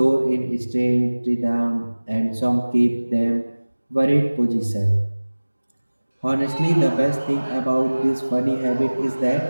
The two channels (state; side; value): inverted; both; correlation -1.00